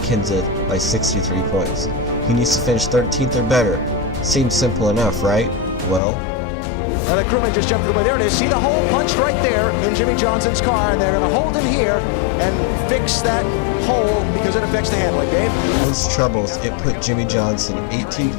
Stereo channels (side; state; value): right; drops out; at 6.0 s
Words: by 63 points. He needs to finish 13th or better. Seems simple enough, right? Well, The crewman just jumped away. There it is. See the hole punched right there in Jimmy Johnson's car, and they're going to hold him here and fix that hole because it affects the handling. Dave? those troubles, it put Jimmy Johnson 18